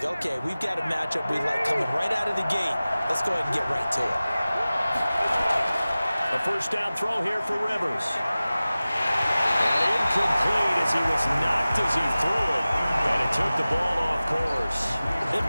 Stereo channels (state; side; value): inverted; both; correlation -0.97